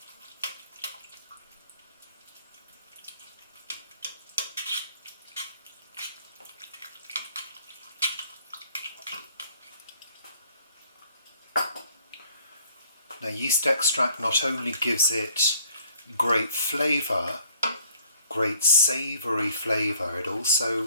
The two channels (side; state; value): both; inverted; correlation -0.58